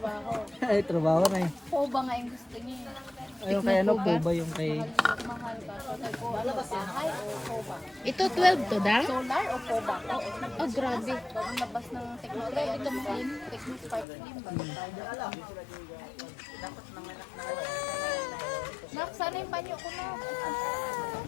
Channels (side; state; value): right; drops out; at 14.1 s